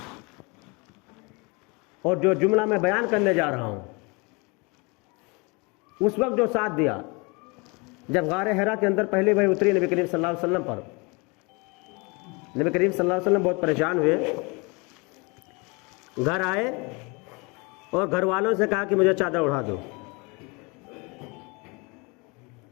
اور جو جملہ میں بیان کرنے جا رہا ہوں، اس وقت جو ساتھ دیا جب غار حرا کے اندر پہلی وحی اتری نبی کریم صلی اللہ علیہ وسلم پر، نبی کریم صلی اللہ علیہ وسلم بہت پریشان ہوئے، گھر آئے اور گھر والوں سے کہا کہ مجھے چادر اڑا دو۔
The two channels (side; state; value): right; quieter; 28.9 dB